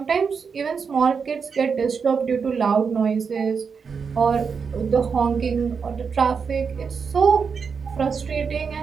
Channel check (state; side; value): quieter; left; 5.9 dB